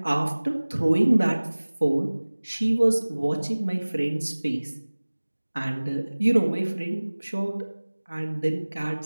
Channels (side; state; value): both; inverted; correlation -1.00